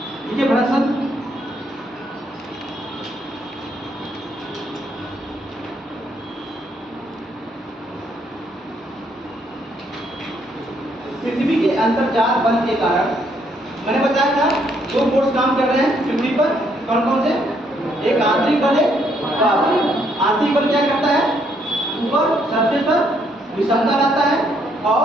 देखिए भ्रंशन पृथ्वी के अंतर्जात बल के कारण, मैंने बताया था दो फोर्स काम कर रहे हैं पृथ्वी पर, कौन कौन से? एक आंतरिक बल है, बाहरी। आंतरिक बल क्या करता है? ऊपर सरफेस पर विषमता लाता है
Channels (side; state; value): both; normal; correlation 0.71